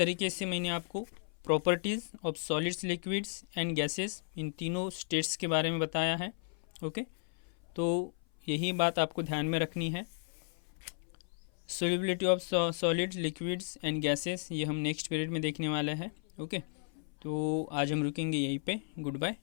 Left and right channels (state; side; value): silent; right; 55 dB below the other